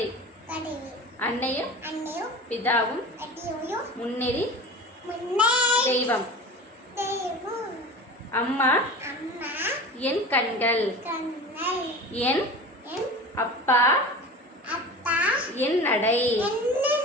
அன்னையும் பிதாவும் முன்னேறி தெய்வம். அம்மா என் கண்கள், என் அப்பா என் நடை.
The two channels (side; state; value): both; normal; correlation 0.34